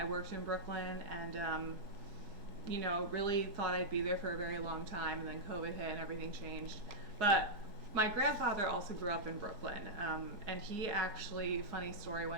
worked in Brooklyn, and really thought I'd be there for a very long time, and then COVID hit and everything changed. But my grandfather also grew up in Brooklyn, and he actually, funny story,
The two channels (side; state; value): left; late; 4.8 ms